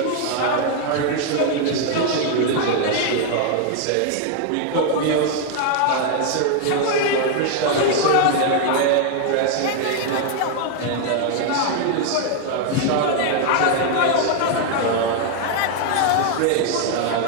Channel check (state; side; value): different; both; correlation 0.00